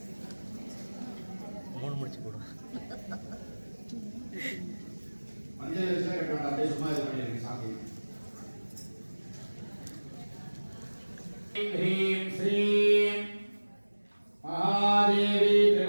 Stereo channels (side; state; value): both; inverted; correlation -1.00